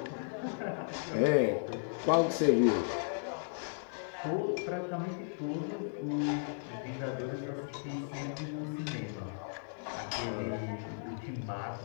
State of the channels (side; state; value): right; silent; digital silence